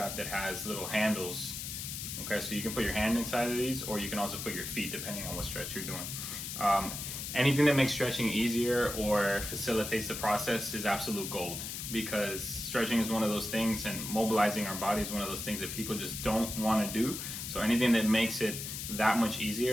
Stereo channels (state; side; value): noise; left; hiss, 6 dB below the sound